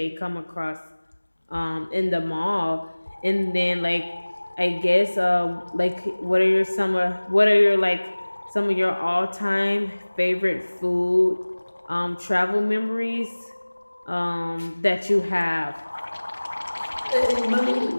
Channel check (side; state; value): both; inverted; correlation -1.00